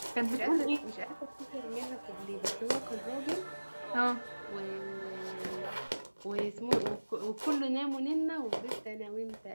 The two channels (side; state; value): both; inverted; correlation -1.00